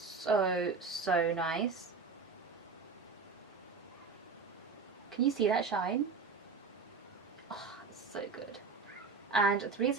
nice. Can you see that shine? Oh, it's so good. And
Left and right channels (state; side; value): quieter; left; 4.8 dB